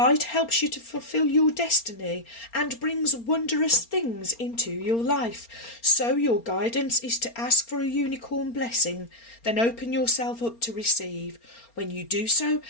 helps you to fulfill your destiny and brings wondrous things into your life. So your guidance is to ask for a unicorn blessing, then open yourself up to receive. When you do so,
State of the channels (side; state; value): right; late; 4.3 ms